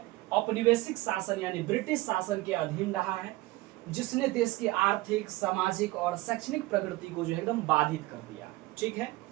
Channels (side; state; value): left; quieter; 19.6 dB